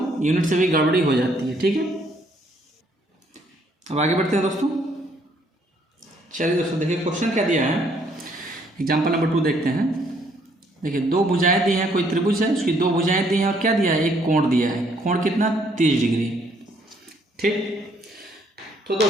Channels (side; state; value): both; normal; correlation 0.66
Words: यूनिट से भी गड़बड़ी हो जाती है। ठीक है, अब आगे बढ़ते हैं दोस्तों। चलिए दोस्तों देखिए क्वेश्चन क्या दिया है, एग्जाम्पल नंबर 2 देखते हैं। देखिए दो भुजाएं दी हैं, कोई त्रिभुज है, उसकी दो भुजाएं दी हैं और क्या दिया है, एक कोण दिया है। कोण कितना, 30 डिग्री। ठीक, तो